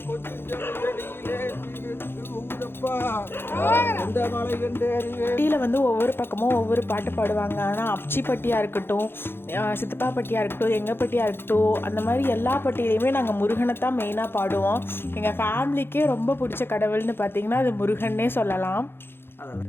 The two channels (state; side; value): late; right; 0.11 ms